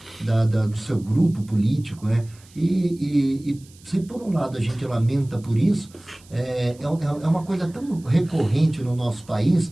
do seu grupo político, né? E se por um lado a gente lamenta por isso, é uma coisa tão recorrente no nosso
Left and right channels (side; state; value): right; noise; hiss, 26 dB below the sound